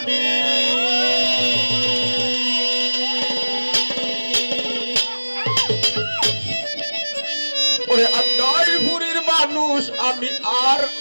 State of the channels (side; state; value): both; inverted; correlation -1.00